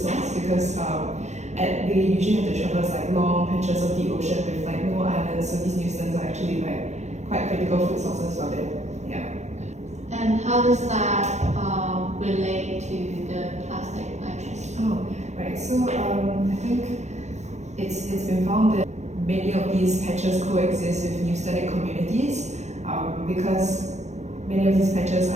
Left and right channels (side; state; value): left; late; 0.33 ms